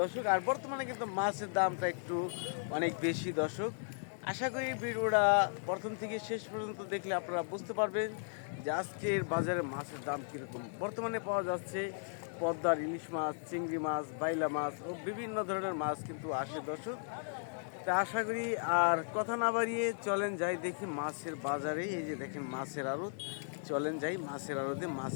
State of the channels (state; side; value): silent; right; digital silence